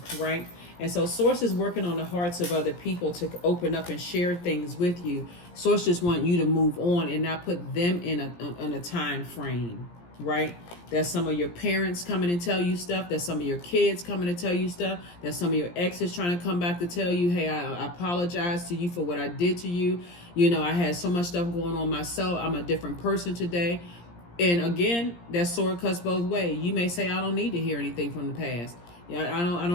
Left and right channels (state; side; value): late; right; 17 ms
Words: right? And so Source is working on the hearts of other people to open up and share things with you. Source just want you to move on and not put them in a time frame, right? That's some of your parents coming and tell you stuff. That's some of your kids coming to tell you stuff. That's some of your exes trying to come back to tell you, hey, I apologize to you for what I did to you. You know, I had so much stuff going on myself. I'm a different person today. And again, that sword cuts both ways. You may say, I don't need to hear anything from the past. Yeah, I